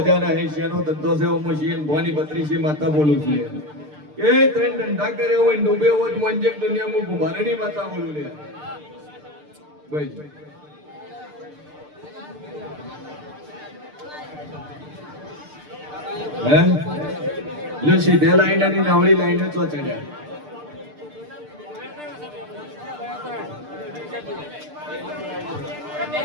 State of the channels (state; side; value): late; left; 6.7 ms